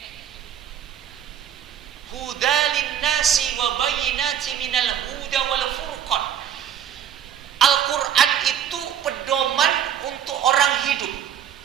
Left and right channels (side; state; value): left; quieter; 9.5 dB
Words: Huda linnasi wa bayyinati minal huda wal furqan. Al-Quran itu pedoman untuk orang hidup,